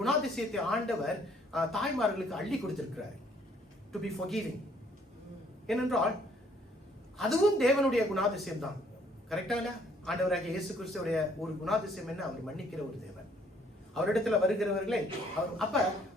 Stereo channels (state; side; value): normal; both; correlation 0.64